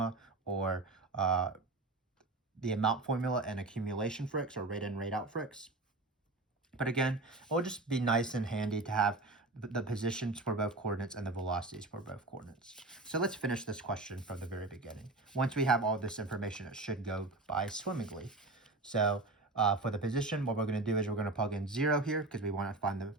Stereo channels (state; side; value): quieter; left; 3.1 dB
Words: or the amount formula and accumulation fricks or rate in, rate out fricks. But again, it will just be nice and handy to have the positions for both coordinates and the velocities for both coordinates. So let's finish this question from the very beginning. Once we have all this information, it should go by swimmingly. So for the position, what we're going to do is we're going to plug in 0 here because we want to find the